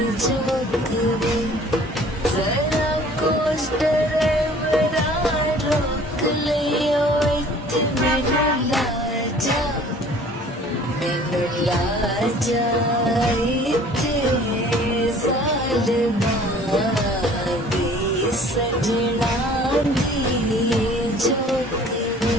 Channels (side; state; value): both; normal; correlation 0.51